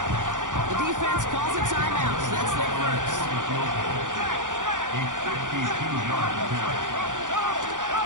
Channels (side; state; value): left; late; 0.87 ms